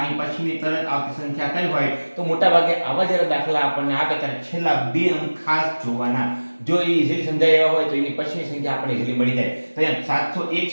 પછીની તરત આવતી સંખ્યા કઈ હોય તો મોટા ભાગે આવા જ્યારે દાખલા આપણને આપે ત્યારે છેલ્લા બે અંક ખાસ જોવાના. જો એ ઇઝીલી સમજાય એવા હોય તો એની પછીની સંખ્યા આપણને ઇઝીલી મળી જાય. તો અહીંયા 701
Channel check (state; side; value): inverted; both; correlation -1.00